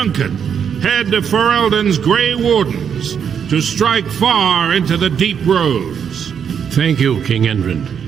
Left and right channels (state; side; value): quieter; left; 7.6 dB